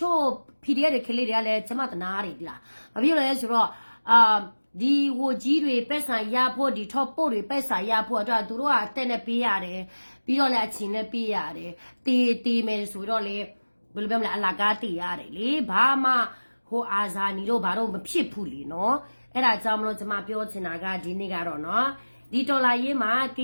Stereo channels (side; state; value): both; inverted; correlation -1.00